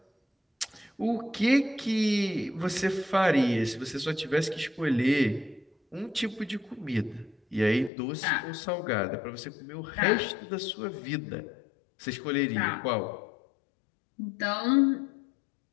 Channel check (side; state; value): right; drops out; at 7.9 s